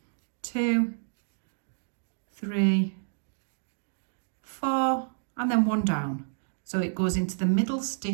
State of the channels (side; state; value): left; silent; digital silence